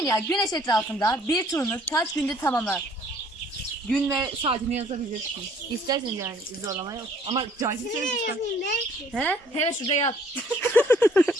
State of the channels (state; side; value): normal; both; correlation 0.58